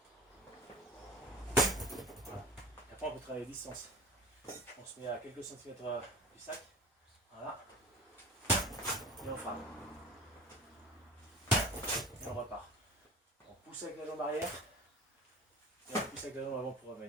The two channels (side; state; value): both; normal; correlation 0.38